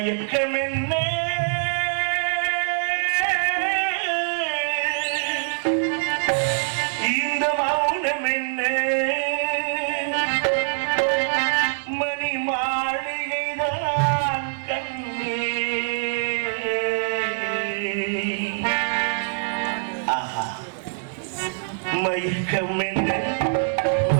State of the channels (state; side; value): silent; left; 59 dB below the other